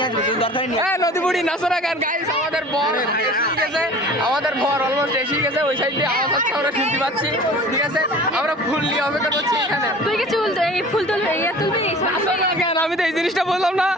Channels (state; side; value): normal; both; correlation 0.43